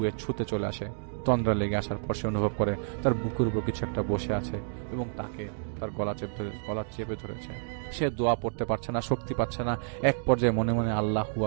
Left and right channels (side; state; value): left; silent; digital silence